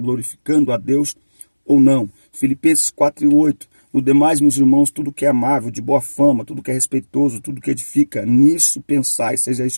a Deus ou não? Filipenses 4:8. No demais, meus irmãos, tudo que é amável, de boa fama, tudo que é respeitoso, tudo que edifica, nisso pensai, seja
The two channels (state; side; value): inverted; both; correlation -1.00